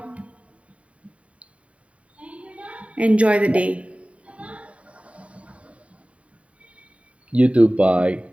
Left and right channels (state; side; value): late; left; 0.064 ms